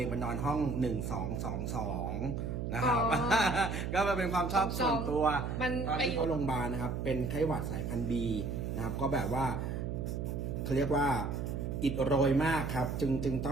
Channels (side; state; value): right; noise; hum, 3 dB below the sound